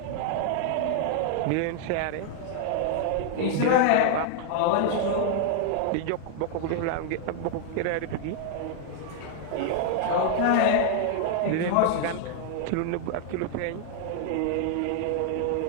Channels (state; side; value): different; both; correlation 0.00